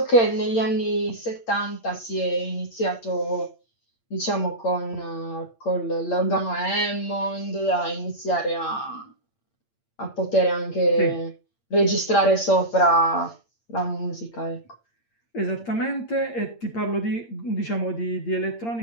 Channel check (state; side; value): late; right; 8.7 ms